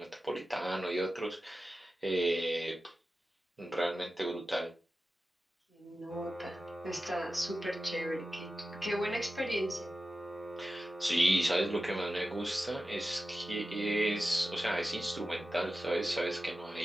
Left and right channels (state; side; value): normal; both; correlation 0.94